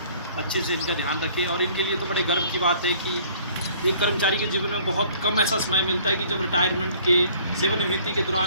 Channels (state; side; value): inverted; both; correlation -0.55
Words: अच्छे से इनका ध्यान रखें। और इनके लिए तो बड़े गर्व की बात है कि एक कर्मचारी के जीवन में बहुत कम ऐसा समय मिलता है कि जब रिटायरमेंट के, सेवानिवृत्ति के